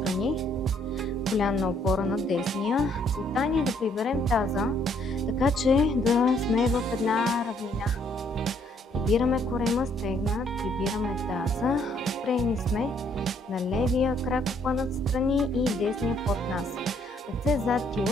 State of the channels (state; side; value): normal; both; correlation 0.67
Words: коленна опора на десния. Целта ни е да приберем таза, така че да сме в една равнина. Прибираме корема, стегна, прибираме таза, спрени сме на левия крак опънат страни и десния под нас. Ръце зад